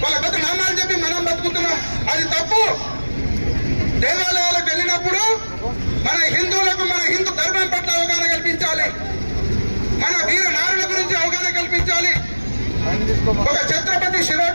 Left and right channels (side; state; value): both; inverted; correlation -1.00